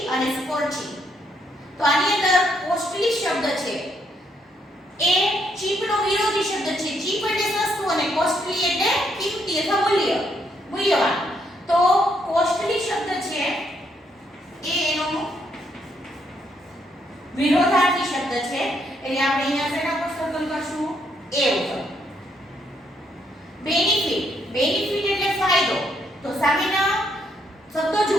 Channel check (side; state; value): both; normal; correlation 0.74